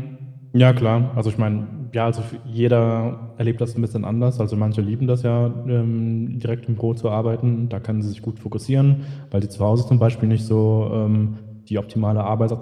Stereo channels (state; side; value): identical; both; correlation 1.00